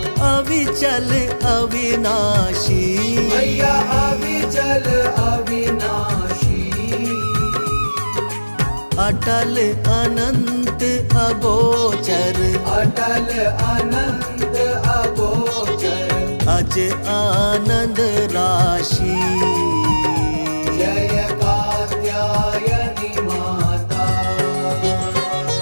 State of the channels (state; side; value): inverted; both; correlation -1.00